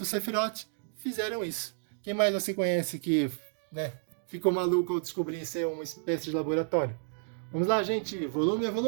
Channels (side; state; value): left; silent; digital silence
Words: o Sephiroth fizeram isso. Quem mais você conhece que, né, ficou maluco ao descobrir ser uma espécie de laboratório? Vamos lá, gente, volume a